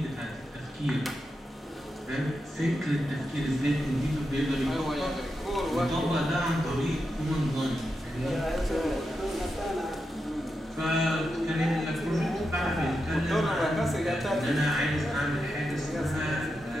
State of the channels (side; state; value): both; normal; correlation 0.87